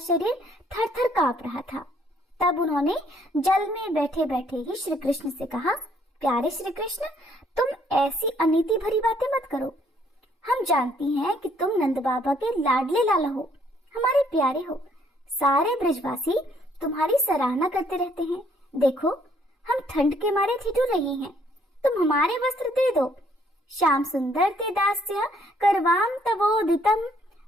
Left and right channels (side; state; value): both; normal; correlation 0.66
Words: थर थर कांप रहा था। तब उन्होंने जल में बैठे बैठे ही श्री कृष्ण से कहा, प्यारे श्री कृष्ण, तुम ऐसी अनीति भरी बातें मत करो। हम जानती हैं कि तुम नंद बाबा के लाडले लाला हो, हमारे प्यारे हो। सारे ब्रजवासी तुम्हारी सराहना करते रहते हैं। देखो, हम ठंड के मारे ठिठुर रही हैं, तुम हमारे वस्त्र दे दो। श्याम सुंदर ते दास्य करवाम तवोदितम